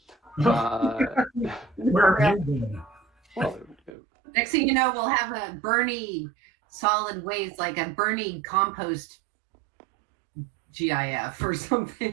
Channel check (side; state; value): left; drops out; at 3.9 s